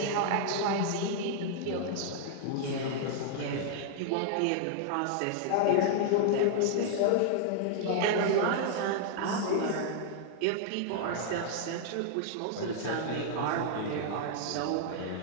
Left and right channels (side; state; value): both; different; correlation -0.01